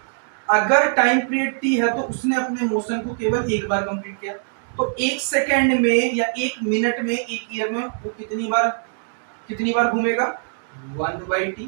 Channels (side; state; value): left; silent; digital silence